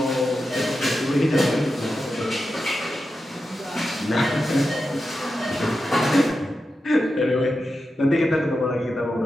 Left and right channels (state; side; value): normal; both; correlation 0.90